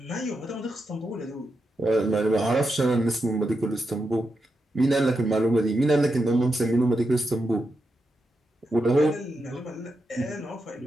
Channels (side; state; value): both; normal; correlation 0.86